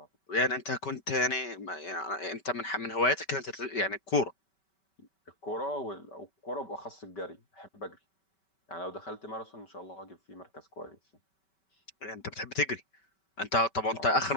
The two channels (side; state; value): right; late; 5.2 ms